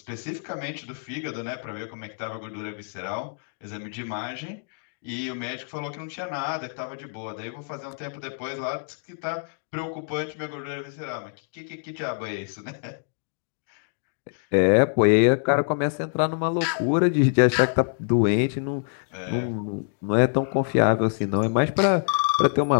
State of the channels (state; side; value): silent; right; digital silence